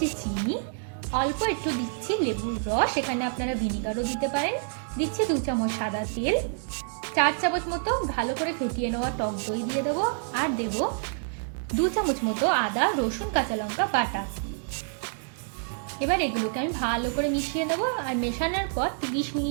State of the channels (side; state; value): left; silent; digital silence